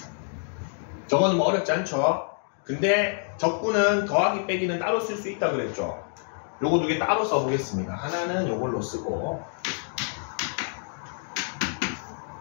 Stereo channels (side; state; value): right; silent; 60 dB below the other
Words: 저거는 뭐 어렵지 않죠. 근데 적분은 더하기 빼기는 따로 쓸 수 있다 그랬죠. 요거 두 개 따로 써보겠습니다. 하나는 요걸로 쓰고